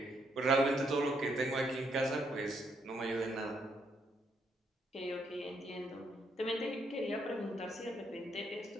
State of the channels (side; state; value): both; normal; correlation 0.74